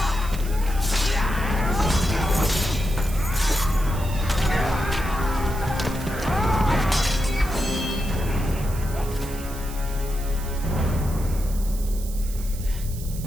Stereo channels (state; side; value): noise; right; hiss, 14 dB below the sound